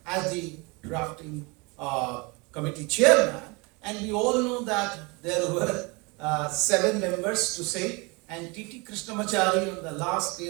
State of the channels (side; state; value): left; quieter; 27.8 dB